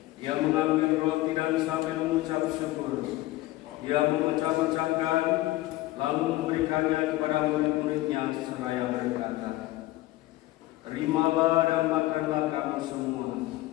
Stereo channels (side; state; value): right; quieter; 17.5 dB